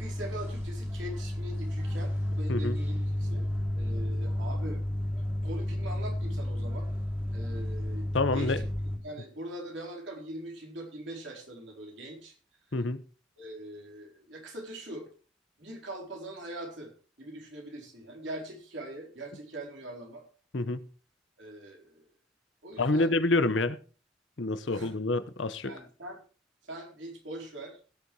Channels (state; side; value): normal; both; correlation 0.61